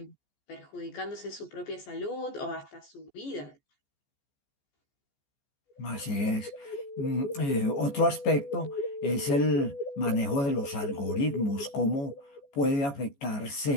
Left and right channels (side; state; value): right; late; 14 ms